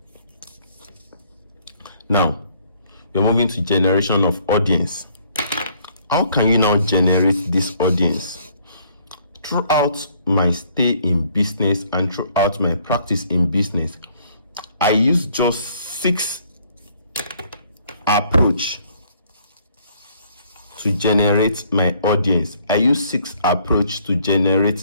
Now, we're moving to generation of audience. How can you now generate this audience? Throughout my stay in business and throughout my practice in business, I use just 6 approach to generate my audience. I use 6 approach to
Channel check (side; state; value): both; inverted; correlation -0.63